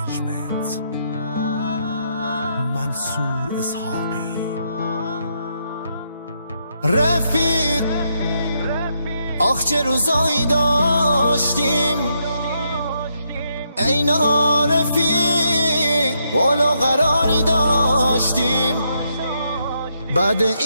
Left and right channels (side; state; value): both; inverted; correlation -0.78